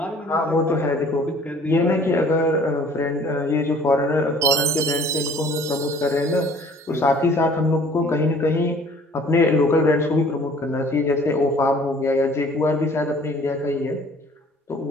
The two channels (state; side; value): normal; both; correlation 0.53